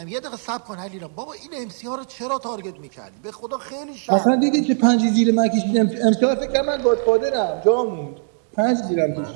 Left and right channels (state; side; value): silent; left; 57 dB below the other